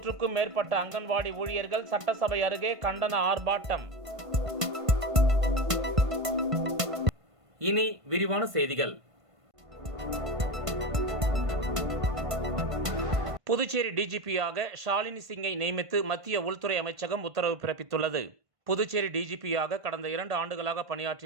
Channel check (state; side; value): late; left; 1.5 ms